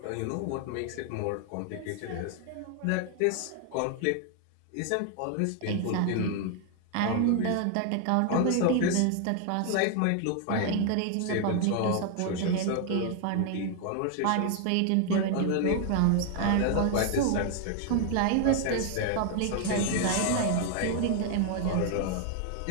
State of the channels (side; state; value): both; different; correlation 0.00